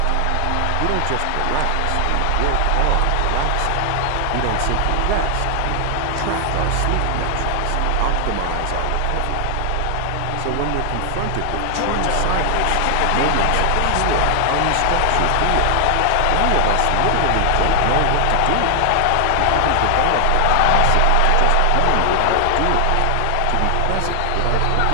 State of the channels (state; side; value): different; both; correlation 0.00